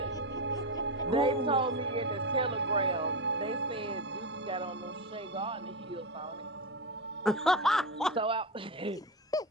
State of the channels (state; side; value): normal; both; correlation 0.15